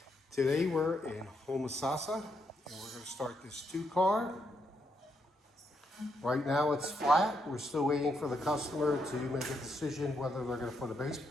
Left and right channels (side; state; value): both; normal; correlation 0.78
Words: Today we're in Homosassa and we're going to start this 2-car. Right now it's flat. We're still waiting for the customer to make a decision whether they're going to put a